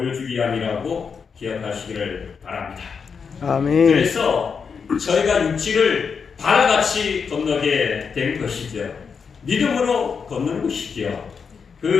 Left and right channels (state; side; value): quieter; right; 5.9 dB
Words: 위함이라고 기억하시기를 바랍니다. 아멘. 그래서 저희가 육지를 바다같이 건너게 된 것이죠. 믿음으로 걷는 것이죠.